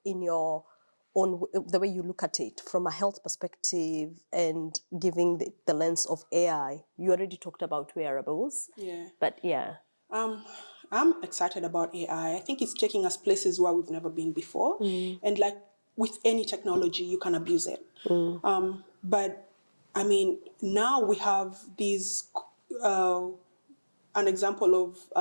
in your own, the way you look at it from a health perspective and giving the lens of AI? You already talked about wearables. Yeah. But yeah. I'm excited about AI. I think it's taking us places where we've never been before. And like with any technology, you can abuse it. But I mean, now we have these, an example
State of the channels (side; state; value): both; inverted; correlation -1.00